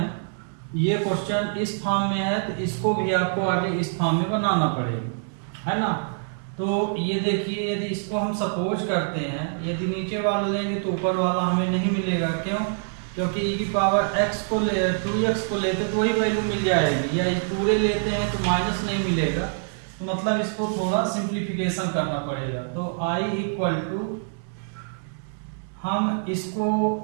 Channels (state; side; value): silent; left; digital silence